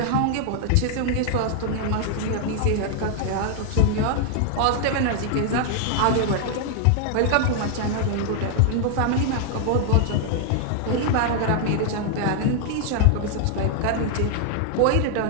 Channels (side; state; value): both; different; correlation 0.00